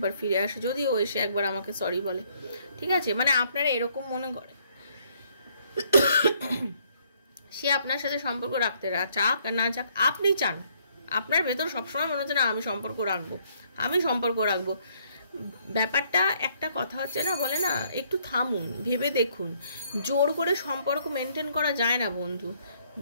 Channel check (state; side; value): inverted; both; correlation -0.67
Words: ফিরে আসে, যদিও এসে একবার আমাকে সরি বলে, ঠিক আছে। মানে আপনারা এরকম মনে করে সে আপনার সাথে সম্পর্ক রাখতে চাক আর না চাক, আপনি চান, আপনার ভেতর সবসময় মনে হচ্ছে না আমি সম্পর্ক রাখবো। ব্যাপারটা একটা কথা হচ্ছে না, বলে না, একটু থামুন, ভেবে দেখুন। জোর করে সম্পর্ক মেনটেন করা যায় না বন্ধু,